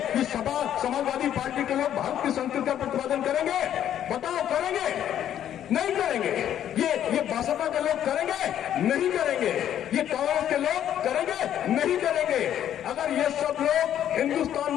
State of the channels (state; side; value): quieter; right; 10.6 dB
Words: समाजवादी पार्टी के लोग भारत की संस्कृति का प्रतिपादन करेंगे? बताओ, करेंगे? नहीं करेंगे। ये भाजपा के लोग करेंगे? नहीं करेंगे। ये कांग्रेस के लोग करेंगे? नहीं करेंगे। अगर ये सब लोग हिंदुस्तान